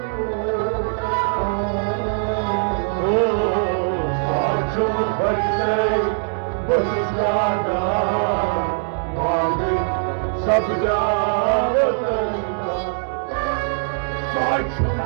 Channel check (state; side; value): silent; left; digital silence